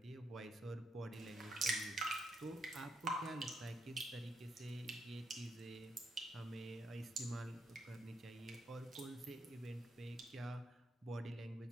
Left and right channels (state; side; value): normal; both; correlation 0.77